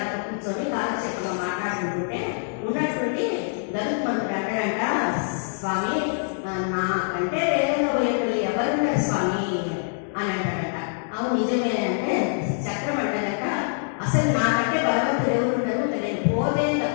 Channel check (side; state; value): right; silent; digital silence